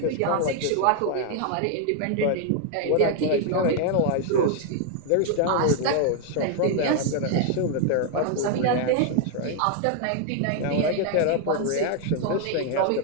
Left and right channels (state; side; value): different; both; correlation 0.00